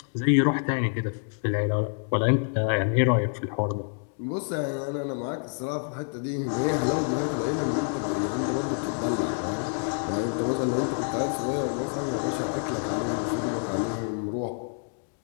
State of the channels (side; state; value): right; silent; 57 dB below the other